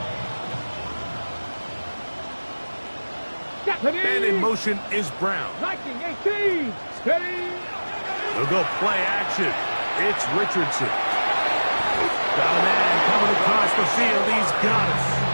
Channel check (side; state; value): both; inverted; correlation -1.00